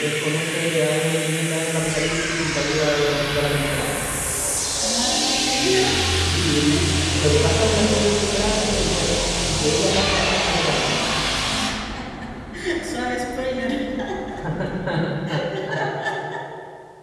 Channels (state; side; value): identical; both; correlation 1.00